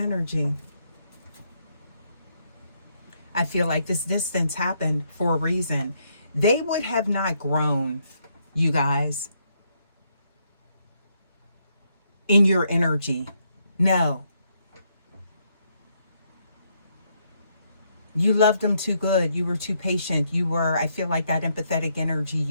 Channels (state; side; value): inverted; both; correlation -0.75